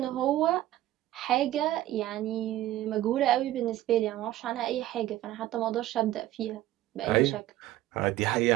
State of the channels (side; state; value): left; quieter; 14.6 dB